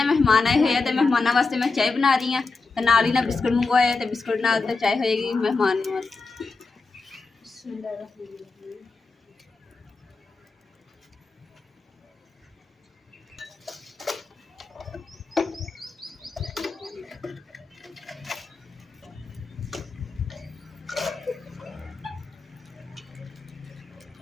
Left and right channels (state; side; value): quieter; right; 4.1 dB